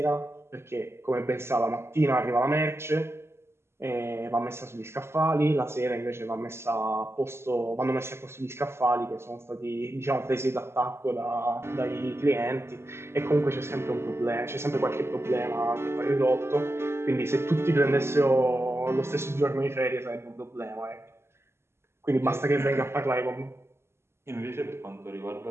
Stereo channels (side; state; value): left; late; 0.12 ms